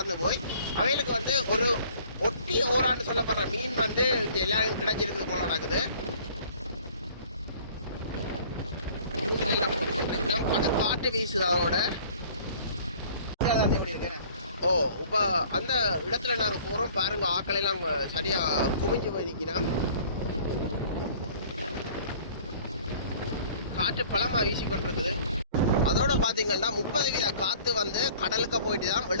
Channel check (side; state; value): both; inverted; correlation -0.52